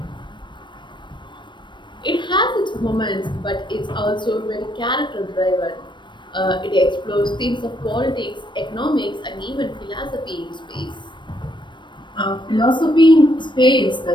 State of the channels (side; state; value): right; late; 0.22 ms